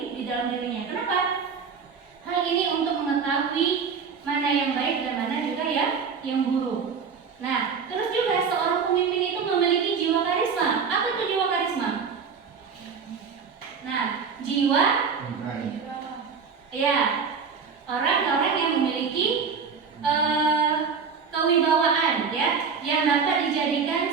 dirinya. Kenapa? Hal ini untuk mengetahui mana yang baik dan mana juga yang buruk. Nah, terus juga seorang pemimpin itu memiliki jiwa karisma. Apa itu jiwa karisma? Nah, jiwa, ya, orang-orang yang memiliki kewibawaan, ya, yang dapat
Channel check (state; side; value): quieter; left; 5.9 dB